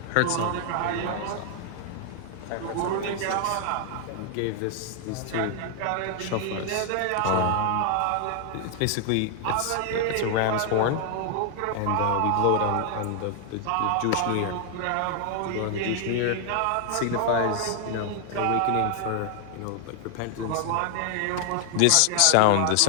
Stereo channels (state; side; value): different; both; correlation 0.00